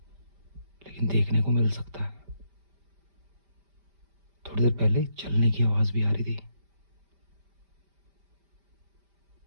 लेकिन देखने को मिल सकता है। थोड़ी देर पहले चलने की आवाज भी आ रही थी,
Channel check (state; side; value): late; left; 5.1 ms